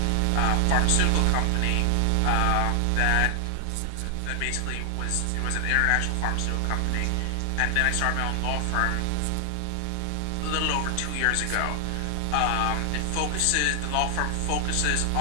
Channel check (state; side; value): different; both; correlation 0.00